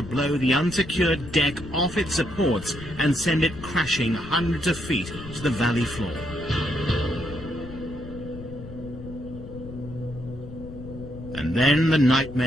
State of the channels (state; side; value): noise; left; rumble, 13 dB below the sound